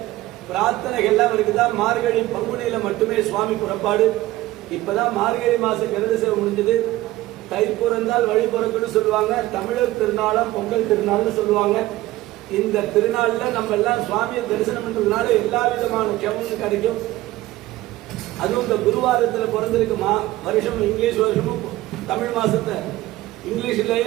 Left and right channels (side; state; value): left; quieter; 17.0 dB